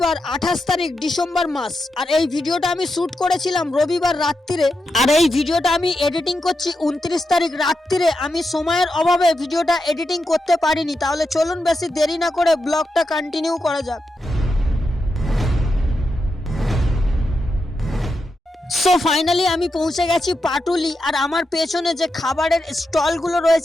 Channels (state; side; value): normal; both; correlation 0.87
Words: 28 তারিখ ডিসেম্বর মাস। আর এই ভিডিওটা আমি শুট করেছিলাম রবিবার রাত্রিরে, আর এই ভিডিওটা আমি এডিটিং করছি 29 তারিখ রাত্রিরে। আমি সময়ের অভাবে ভিডিওটা এডিটিং করতে পারিনি। তাহলে চলুন বেশি দেরি না করে ব্লগটা কন্টিনিউ করা যাক। সো ফাইনালি আমি পৌঁছে গেছি পাটুলি। আর আমার পেছনে যে খাবারের স্টলগুলো